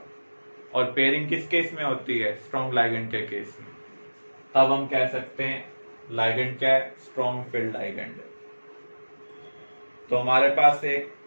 और पेयरिंग किस केस में होती है? स्ट्रॉन्ग लाइगेंड के केस में। तब हम कह सकते हैं लाइगेंड क्या है? स्ट्रॉन्ग फील्ड लाइगेंड है। तो हमारे पास एक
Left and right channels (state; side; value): inverted; both; correlation -1.00